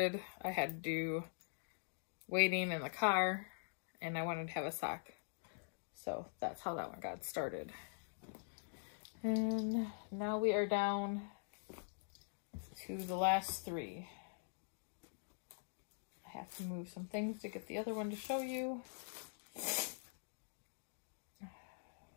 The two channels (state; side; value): silent; right; digital silence